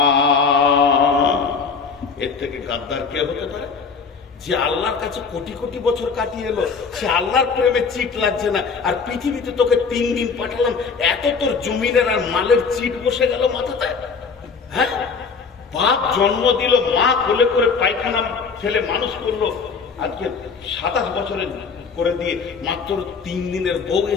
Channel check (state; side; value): quieter; right; 5.3 dB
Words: এর থেকে গাদ্দার কে হতে পারে? যে আল্লাহর কাছে কোটি কোটি বছর কাটিয়ে এলো, সে আল্লাহর প্রেমে চিট লাগছে না। আর পৃথিবীতে তোকে 3 দিন পাঠালাম, এত তোর জমিনের আর মালের চিট বসে গেল মাথাতে। হ্যাঁ, বাপ জন্ম দিল, মা কোলে করে পায়খানা ছেলে মানুষ করলো, আজকে 27 বছরের করে দিয়ে মাত্র 3 দিনের বউ